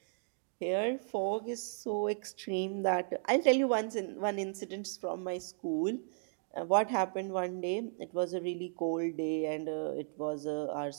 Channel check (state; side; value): silent; left; digital silence